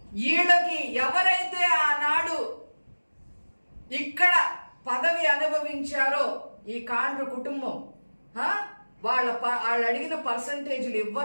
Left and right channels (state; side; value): inverted; both; correlation -1.00